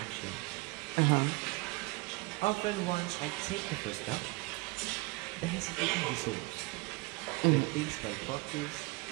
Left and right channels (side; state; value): left; quieter; 25.4 dB